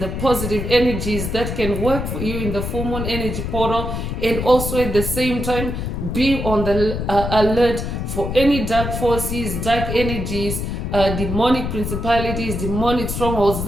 the positive energies that can work for you in the full moon energy portal, and also at the same time be on the alert for any dark forces, dark energies demonic principalities, demonic strongholds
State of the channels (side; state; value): left; noise; rumble, 4 dB below the sound